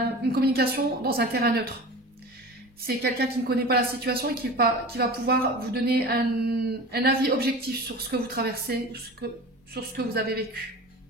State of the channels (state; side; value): normal; both; correlation 0.35